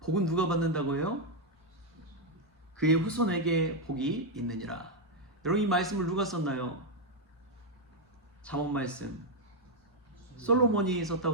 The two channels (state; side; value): normal; both; correlation 0.01